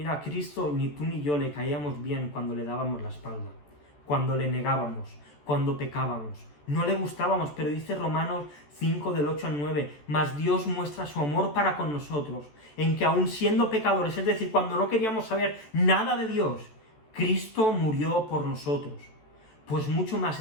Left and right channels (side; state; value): right; late; 14 ms